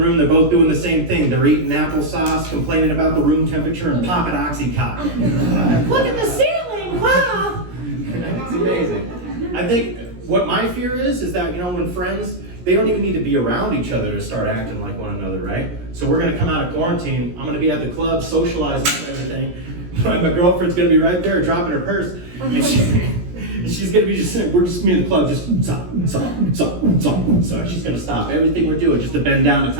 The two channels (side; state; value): left; late; 17 ms